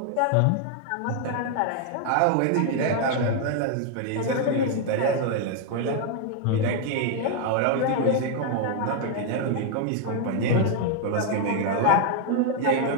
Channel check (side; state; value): both; different; correlation 0.00